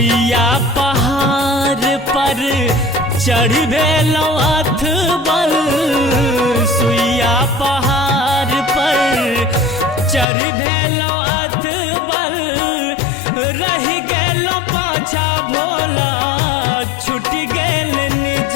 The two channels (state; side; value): drops out; right; at 10.2 s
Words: पहाड़ पर चढ़ भेलौ अथबल, सुइया पहाड़ पर चढ़ भेलौ अथबल, रहि गेलौ पाछा भोला छूट गेल निज